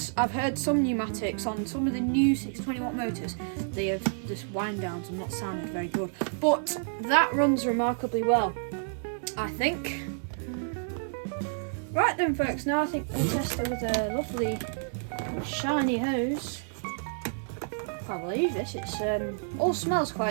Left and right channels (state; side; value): silent; left; digital silence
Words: I've heard some Numatics on some of the new 620 watt motors, they have just wind downs and not sounded very good, but that runs remarkably well, I think. Right then, folks, now I think we'll test her with a lovely shiny hose. Can't believe this, it's all smells